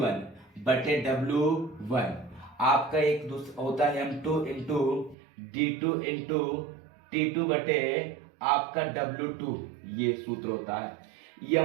बटे w1। आपका एक दूसरा होता है m2 into d2 into t2 बटे आपका w2। ये सूत्र होता है।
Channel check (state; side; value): drops out; left; at 5.2 s